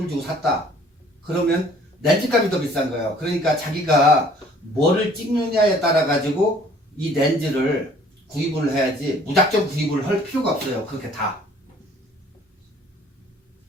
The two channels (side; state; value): both; normal; correlation 0.55